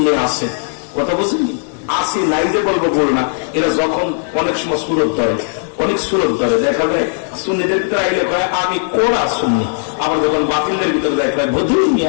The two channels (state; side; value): silent; right; digital silence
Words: আছে, কথা বুঝলি আসি নাই যে বলবো বল না, এরা যখন অনেক সময় সুরত ধরে, অনেক সুরত ধরে, দেখা যায় সুন্নিদের ভিতরে আইলে কয় আমি কোরা সুন্নি, আবার যখন বাতিলদের ভিতরে যায় কয় বধুই